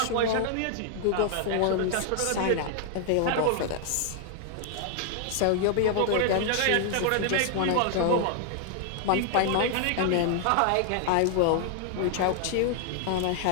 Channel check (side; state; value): both; different; correlation 0.00